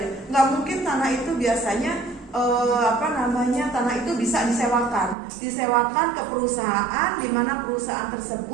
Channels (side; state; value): left; drops out; at 5.2 s